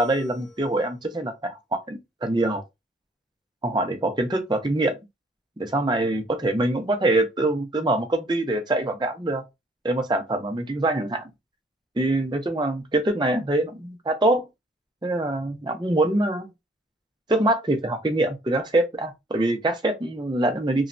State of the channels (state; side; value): normal; both; correlation 0.60